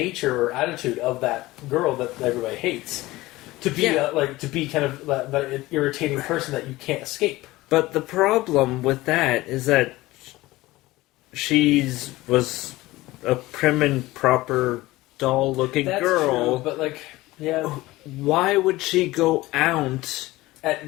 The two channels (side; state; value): right; quieter; 18.8 dB